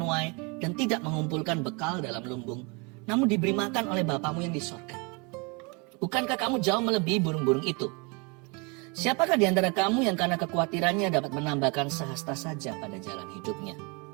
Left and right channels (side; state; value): left; quieter; 30.1 dB